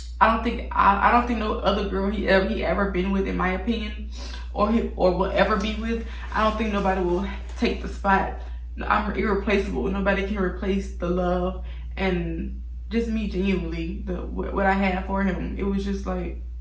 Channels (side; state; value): both; identical; correlation 1.00